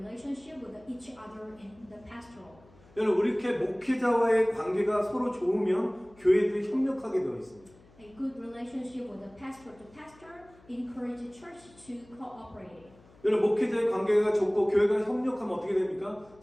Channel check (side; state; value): left; noise; hum, 26 dB below the sound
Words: with each other in the pastoral. 여러분 이렇게 목회자와의 관계가 서로 좋으면 교회들이 협력하게 되어 있습니다. A good relationship with the pastor to pastor encourages church to cooperate. 여러분 목회자의 관계가 좋고 교회가 협력하면 어떻게 됩니까?